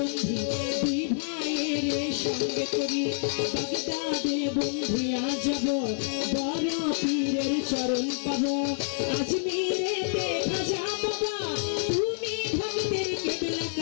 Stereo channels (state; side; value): silent; right; 59 dB below the other